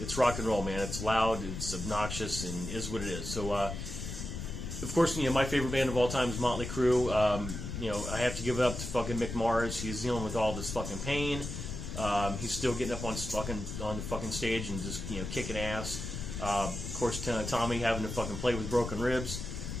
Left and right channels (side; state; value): left; noise; rumble, 6 dB below the sound